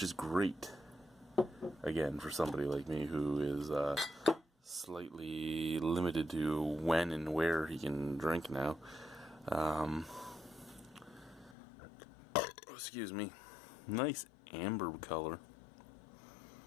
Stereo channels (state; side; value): drops out; right; at 11.6 s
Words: is great. Again, for somebody like me who is slightly limited to when and where he can drink now. Excuse me. Nice amber color.